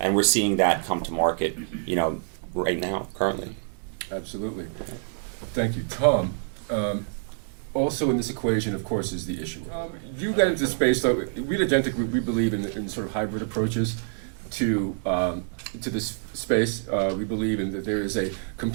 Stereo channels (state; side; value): silent; left; digital silence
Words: And we're seeing that come to market, right now, currently. Absolutely. Thank you. Tom, also in this equation, of course, is the issuer. You got into space, so we at Agentic, we believe in sort of hybrid approaches to this space. We believe in that there is a